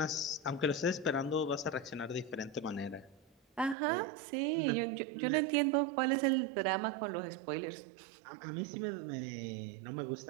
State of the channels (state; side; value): drops out; left; at 3.8 s